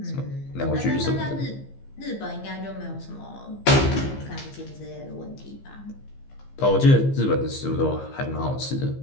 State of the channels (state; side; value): late; right; 15 ms